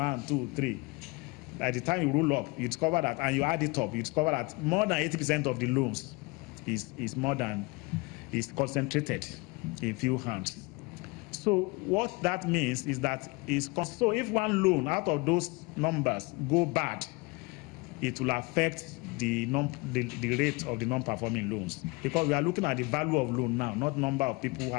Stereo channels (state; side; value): quieter; right; 26.2 dB